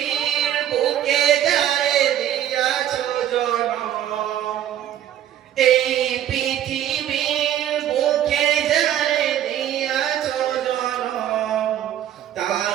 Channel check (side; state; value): left; quieter; 11.2 dB